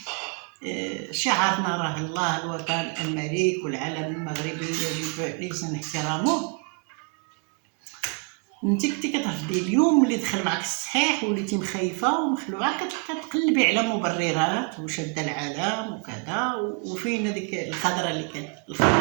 شعارنا راه الله الوطن الملك والعلم المغربي يجب لازم احترامه. انت كنتي كترفضي اليوم اللي دخل معك الصحيح وليتي مخيفه ومخلوعه كتقلبي على مبررات وشاده العلم وكذا. وفين هذيك الخضره اللي كانت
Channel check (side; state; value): left; quieter; 34.6 dB